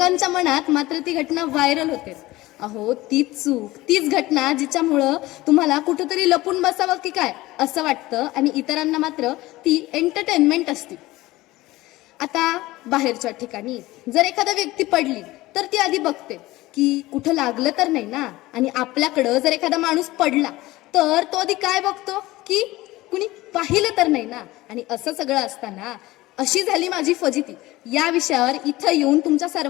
मनात मात्र ती घटना व्हायरल होते. अहो, तीच चूक, तीच घटना जिच्यामुळं तुम्हाला कुठंतरी लपून बसावं की काय असं वाटतं आणि इतरांना मात्र ती एंटरटेनमेंट असते. आता बाहेरच्या ठिकाणी जर एखादा व्यक्ती पडली तर ती आधी बघते की कुठं लागलं तर नाही ना, आणि आपल्याकडं जर एखादा माणूस पडला तर तो आधी काय बघतो की कुणी पाहिलं तर नाही ना. आणि असं सगळं असताना अशी झाली माझी फजिती या विषयावर इथं येऊन तुमच्या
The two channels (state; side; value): quieter; right; 18.6 dB